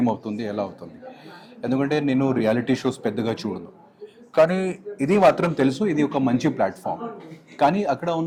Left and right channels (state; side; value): identical; both; correlation 1.00